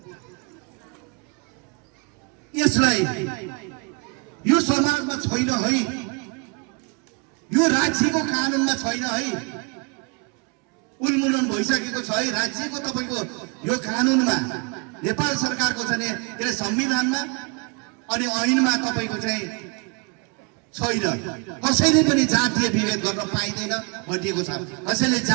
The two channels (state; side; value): quieter; left; 31.6 dB